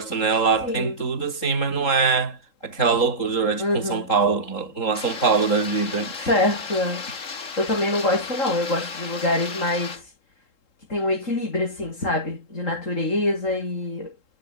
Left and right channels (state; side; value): late; right; 3.8 ms